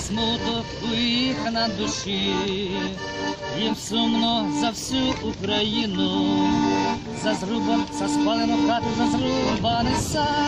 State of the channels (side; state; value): both; identical; correlation 1.00